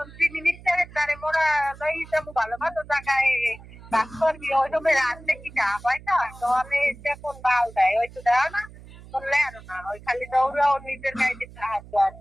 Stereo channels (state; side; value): noise; right; hum, 19 dB below the sound